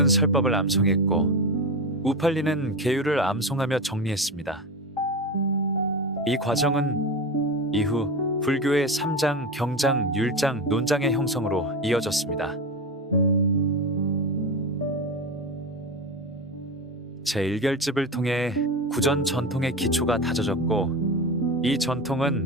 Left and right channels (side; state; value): both; normal; correlation 0.22